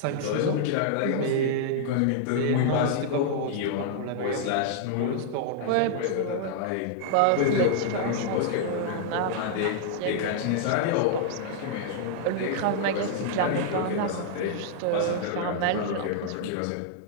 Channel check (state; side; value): different; both; correlation -0.01